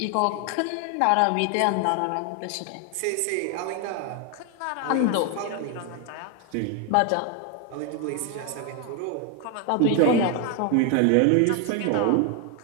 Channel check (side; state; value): both; different; correlation 0.01